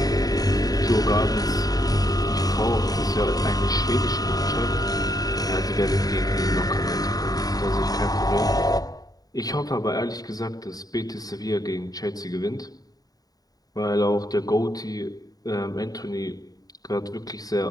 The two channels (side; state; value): right; late; 0.18 ms